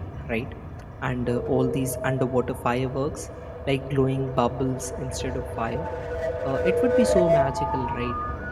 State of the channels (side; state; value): both; identical; correlation 1.00